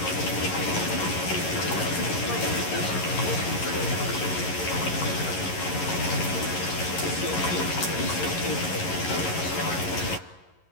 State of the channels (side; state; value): right; late; 11 ms